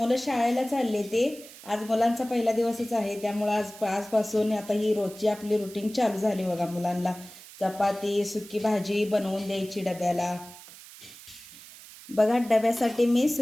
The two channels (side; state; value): right; noise; hiss, 18 dB below the sound